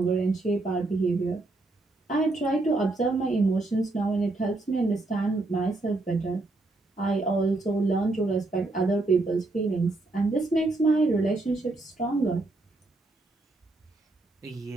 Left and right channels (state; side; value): quieter; left; 3.1 dB